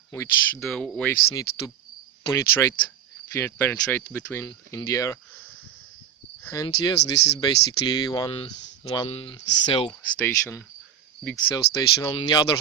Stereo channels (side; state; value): left; quieter; 9.1 dB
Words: which the waves need to penetrate between in the air. And yes, this is basically one cell station, big cell station. On the other